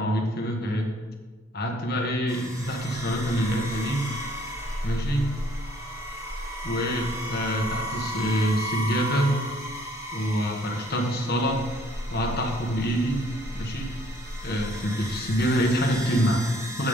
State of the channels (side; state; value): both; normal; correlation 0.62